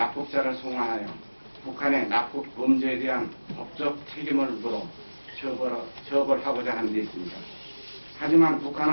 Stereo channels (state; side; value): inverted; both; correlation -1.00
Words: 송환하여 북한의 납북 범죄에 대한 법적 책임을 물어 처벌하고자 하는 데 있습니다. 하지만